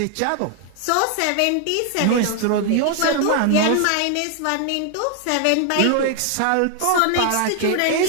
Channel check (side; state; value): both; different; correlation 0.00